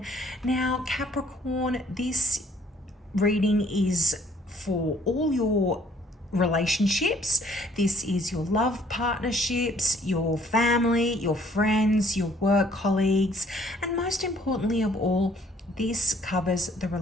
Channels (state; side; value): normal; both; correlation 0.61